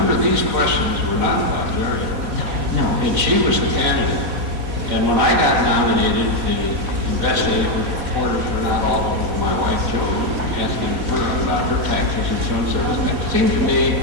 these questions were not about Jerry. No. And she was the candidate. And when I got nominated, the investigative reporters were not all over my wife, Joe, asking her about her taxes and so on. So it seemed to me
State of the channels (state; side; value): late; left; 4.2 ms